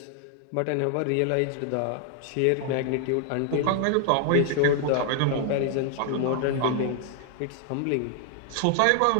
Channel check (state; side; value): different; both; correlation 0.00